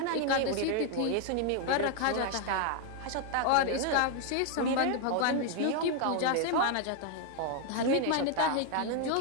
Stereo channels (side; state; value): both; different; correlation 0.01